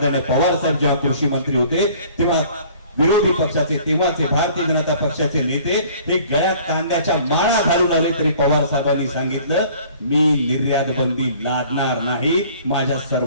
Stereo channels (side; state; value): both; inverted; correlation -0.52